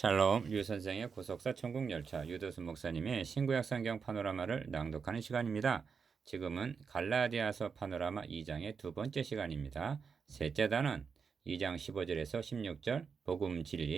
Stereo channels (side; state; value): left; quieter; 5.8 dB